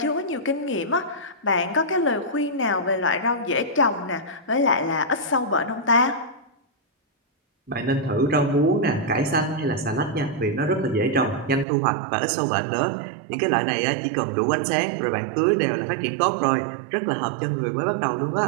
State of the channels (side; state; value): left; drops out; at 11.7 s